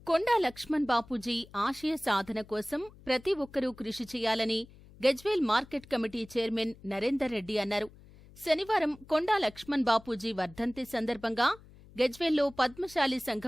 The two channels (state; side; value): noise; left; hum, 22 dB below the sound